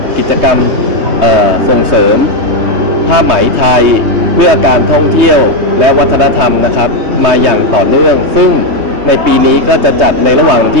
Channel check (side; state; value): left; late; 3.2 ms